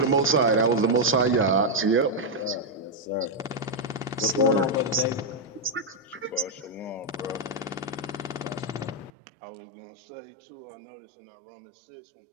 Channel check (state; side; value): drops out; left; at 9.1 s